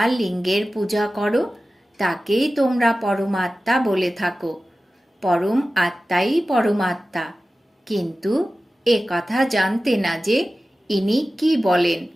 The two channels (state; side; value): normal; both; correlation 0.95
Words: লিঙ্গের পূজা করো, তাকেই তোমরা পরমাত্মা বলে থাকো। পরম আত্মাই পরমাত্মা। কিন্তু এ কথা জানতে না যে ইনি কি বলেন।